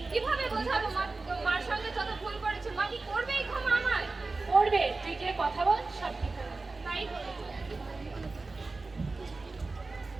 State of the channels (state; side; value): quieter; left; 3.6 dB